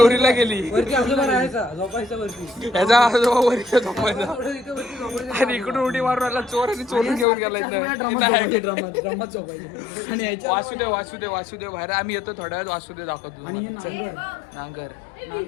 गेली. याचा आजोबा वरती झोपायचा आणि इकडून उडी मारून आला चोर आणि चोरून घेऊन गेला. वासुदेव बाहेर. आम्ही येतो थोड्या वेळात. वासुदेव दाखवतो. नांगर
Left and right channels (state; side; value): drops out; right; at 7.2 s